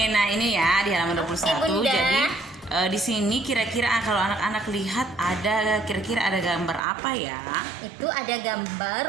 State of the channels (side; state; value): left; drops out; at 6.8 s